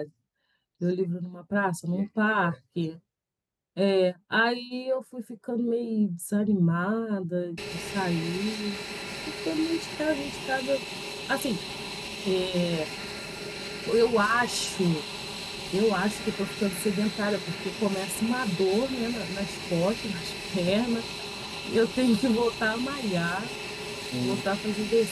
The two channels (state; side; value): identical; both; correlation 1.00